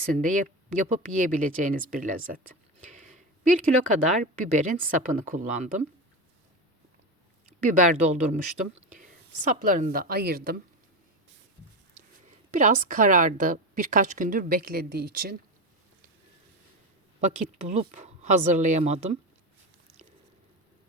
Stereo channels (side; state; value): both; normal; correlation 0.19